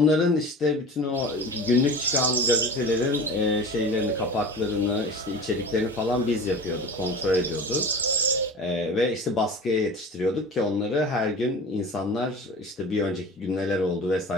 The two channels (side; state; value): both; normal; correlation 0.35